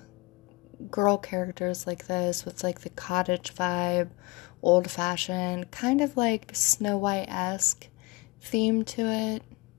girl characters like this with like the cottage vibe, old-fashioned, kind of like Snow White-esque theme to it,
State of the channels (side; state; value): right; quieter; 25.2 dB